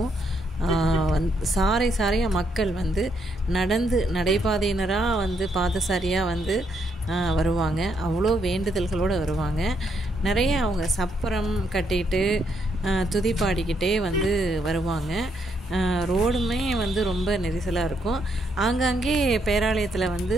சாரையாக மக்கள் வந்து நடைபாதையினராக வந்து பாதசாரியாக வந்து வருவாங்க. அவ்வளோ வேண்டுதல்களோடு வருவாங்க. நிறைய அவங்க சப்பரம் கட்டிட்டு துதி பாடிக்கிட்டே வந்து வருவாங்க. ரோடுமே வந்து ரொம்ப நெரிசலாக இருக்கும். ஆங்காங்கே பேராலயத்தில் வந்து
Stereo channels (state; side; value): normal; both; correlation 0.75